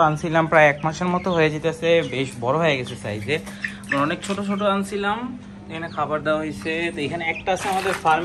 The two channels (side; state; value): both; identical; correlation 1.00